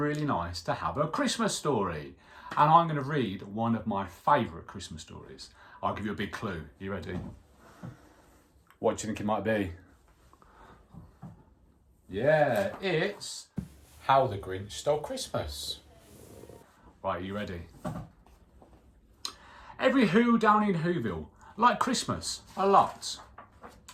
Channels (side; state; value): both; identical; correlation 1.00